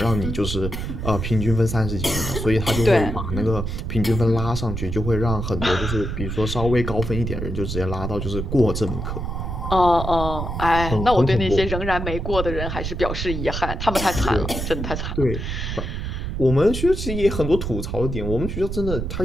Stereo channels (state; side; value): noise; right; rumble, 4 dB below the sound